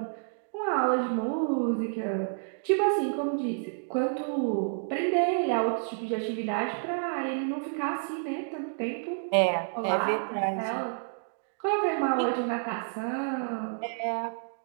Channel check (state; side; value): silent; left; digital silence